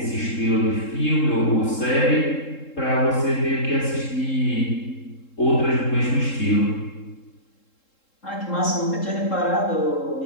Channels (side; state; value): right; late; 3.7 ms